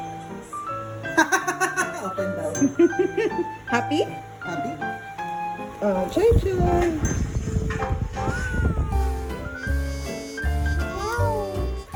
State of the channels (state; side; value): identical; both; correlation 1.00